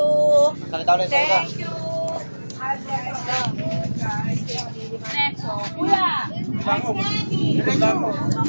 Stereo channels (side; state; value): both; inverted; correlation -1.00